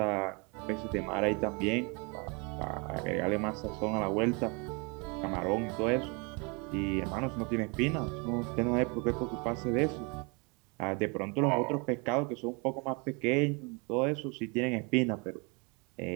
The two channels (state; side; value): quieter; left; 31.3 dB